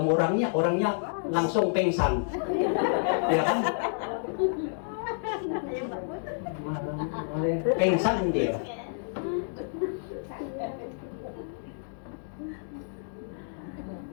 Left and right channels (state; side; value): silent; right; digital silence